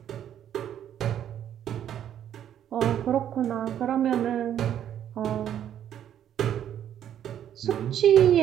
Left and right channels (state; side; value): quieter; left; 10.2 dB